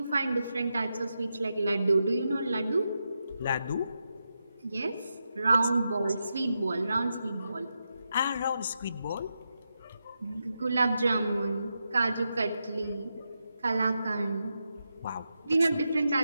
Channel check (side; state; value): both; inverted; correlation -0.87